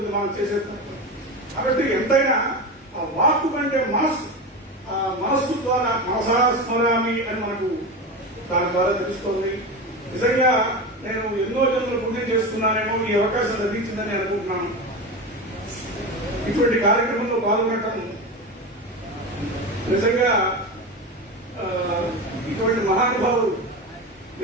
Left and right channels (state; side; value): normal; both; correlation 0.23